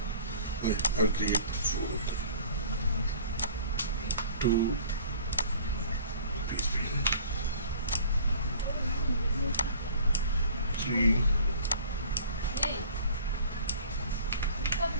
Okay, I'll create 4 of them. 2 PHP.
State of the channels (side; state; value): both; inverted; correlation -0.48